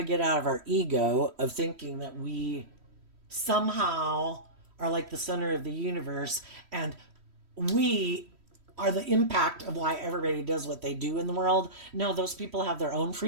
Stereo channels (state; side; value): late; left; 3.1 ms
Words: get out of our ego of thinking that we somehow are like the center of the universe and we are the impact of why everybody does what they do in the world. No, those people have their own